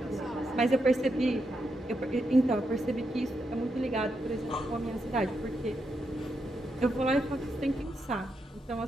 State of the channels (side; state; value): both; normal; correlation 0.83